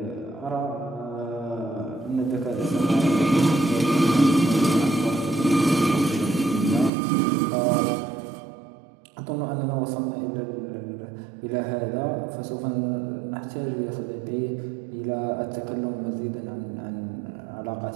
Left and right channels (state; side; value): drops out; left; at 6.9 s